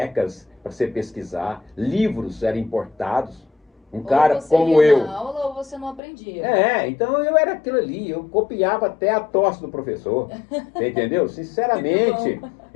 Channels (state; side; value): drops out; right; at 6.0 s